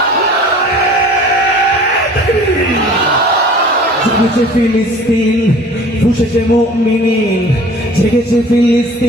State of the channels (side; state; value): both; normal; correlation 0.46